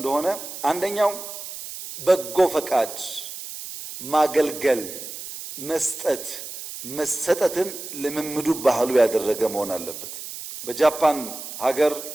አንደኛው በጎ ፈቃድ፣ ማገልገል፣ መስጠት፣ መሰጠትን ልምምዱ ባህሉ ያደረገ መሆን አለበት። በጃፓን ሀገር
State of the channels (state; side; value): noise; right; hiss, 10 dB below the sound